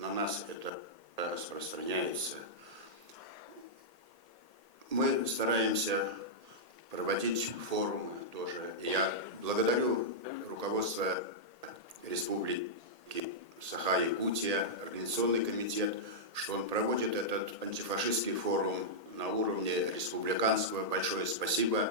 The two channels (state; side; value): late; left; 1.8 ms